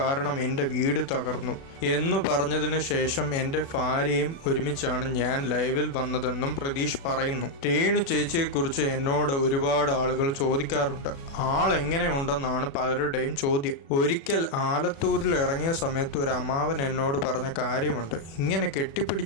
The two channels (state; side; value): late; right; 36 ms